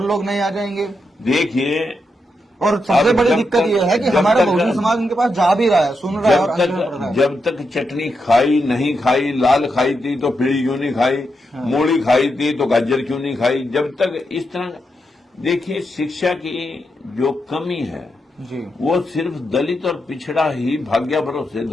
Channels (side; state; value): both; normal; correlation 0.84